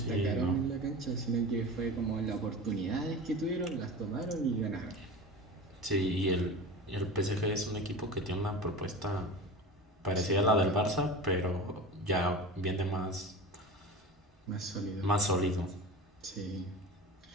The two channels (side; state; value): both; normal; correlation 0.32